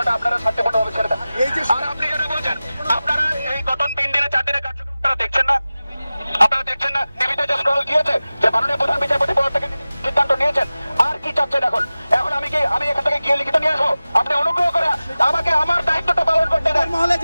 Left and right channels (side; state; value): both; inverted; correlation -0.97